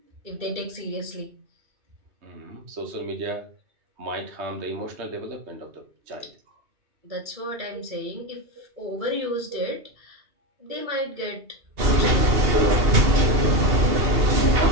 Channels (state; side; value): late; left; 2.8 ms